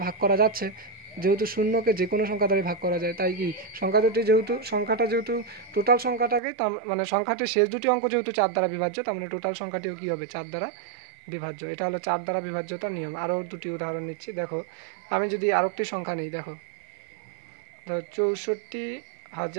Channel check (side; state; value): left; drops out; at 6.4 s